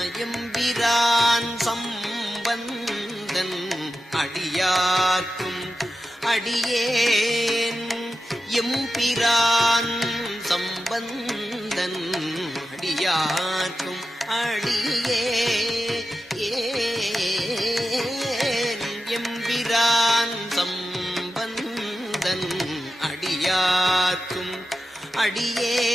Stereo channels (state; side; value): normal; both; correlation 0.91